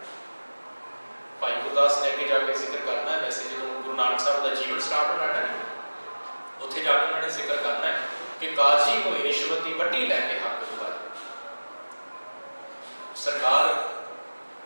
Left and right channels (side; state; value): both; inverted; correlation -1.00